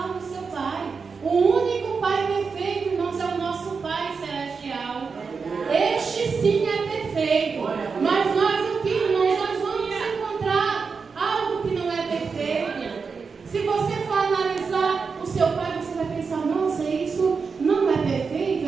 no seu pai. O único pai perfeito, irmãos, é o nosso Pai Celestial. Este sim é perfeito. Mas nós aqui, irmãos, nós vamos encontrar algo que não é perfeito. Se você for analisar o seu pai, você vai pensar: nossa,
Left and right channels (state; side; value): quieter; left; 5.2 dB